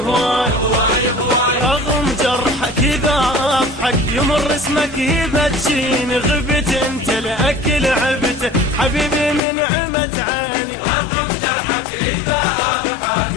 رغم جرحك إذا أضحك يمر اسمك يبتشيني، غبت انت لأكل عبته حبيبي من عمت عيني.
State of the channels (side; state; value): right; drops out; at 9.4 s